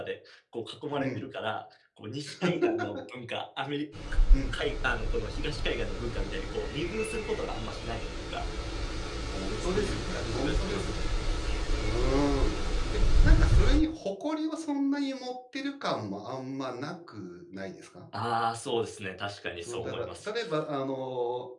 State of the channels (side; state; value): both; identical; correlation 1.00